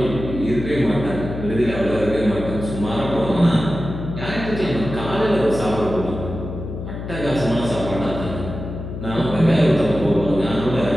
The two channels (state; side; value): noise; left; hum, 8 dB below the sound